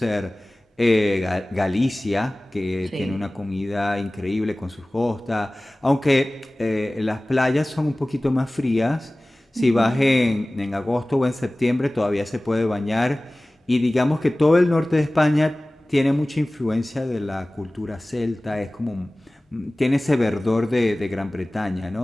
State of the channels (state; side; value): normal; both; correlation 0.98